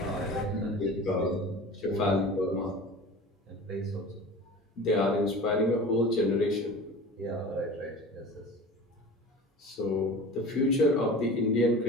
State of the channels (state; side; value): normal; both; correlation 0.37